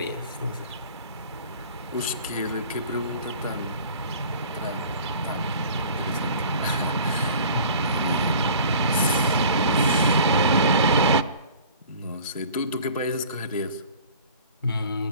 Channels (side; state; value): both; inverted; correlation -0.46